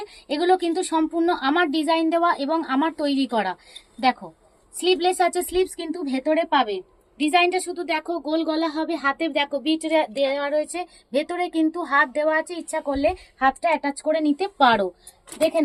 এগুলো কিন্তু সম্পূর্ণ আমার ডিজাইন দেওয়া এবং আমার তৈরি করা। দেখো স্লিভলেস আছে, স্লিভস কিন্তু ভেতরে পাবে। ডিজাইনটা শুধু দেখো, গোল গলা হবে, হাতে দেখো বিট দেওয়া রয়েছে, ভেতরে কিন্তু হাত দেওয়া আছে, ইচ্ছা করলে হাতটা অ্যাটাচ করে নিতে পারো। দেখে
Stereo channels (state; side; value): identical; both; correlation 1.00